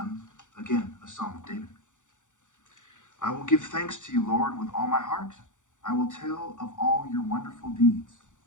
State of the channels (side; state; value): right; late; 0.86 ms